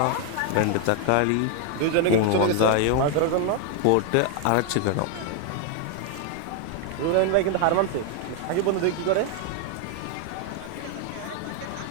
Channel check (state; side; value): different; both; correlation 0.01